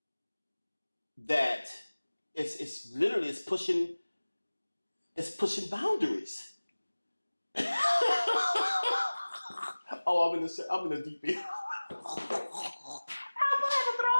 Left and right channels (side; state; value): both; inverted; correlation -1.00